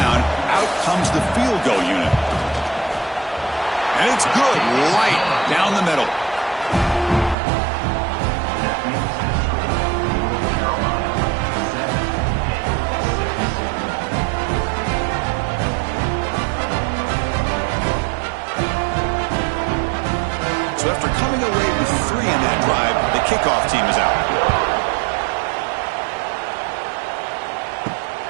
out comes the field goal unit. And it's good, right down the middle. So after coming away with 3 in that drive, the kickoff team is out.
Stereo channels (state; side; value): drops out; left; at 7.4 s